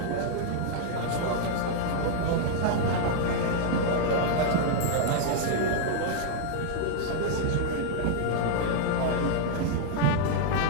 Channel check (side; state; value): both; different; correlation -0.01